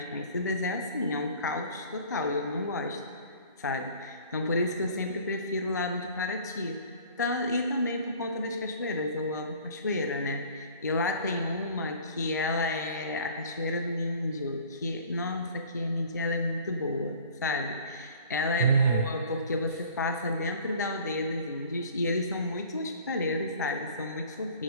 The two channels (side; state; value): both; inverted; correlation -0.49